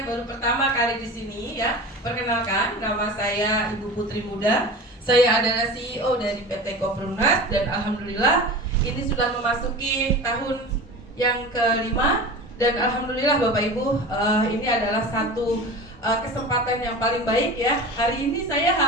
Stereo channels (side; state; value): both; normal; correlation 0.33